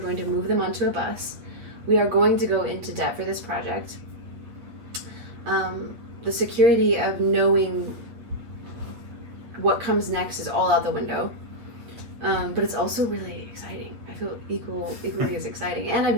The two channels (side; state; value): left; late; 8.6 ms